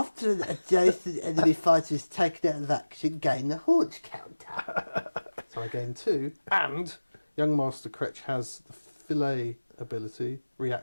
an adjacent enemy fighter is taken out of action, gain a haunch counter. So I gain 2, and Young Master Cretch has the fillet ability,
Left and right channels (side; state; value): both; inverted; correlation -1.00